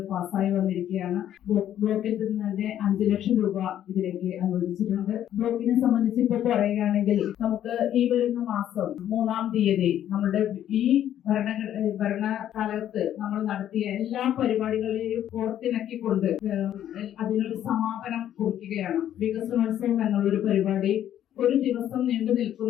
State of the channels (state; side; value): quieter; right; 11.0 dB